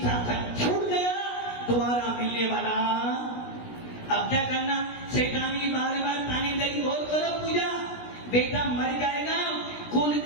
छूट गया, दोबारा मिलने वाला। अब क्या करना? शैतानी बार बार ताने लगी, और करो पूजा, बेटा मर जाएगा, कुल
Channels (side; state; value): right; late; 17 ms